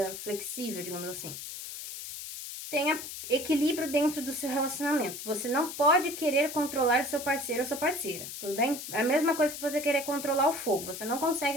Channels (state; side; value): noise; left; hiss, 9 dB below the sound